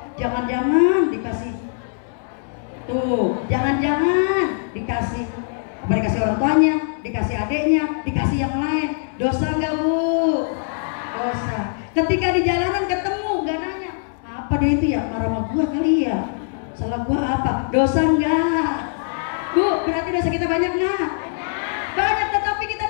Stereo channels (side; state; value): right; silent; 64 dB below the other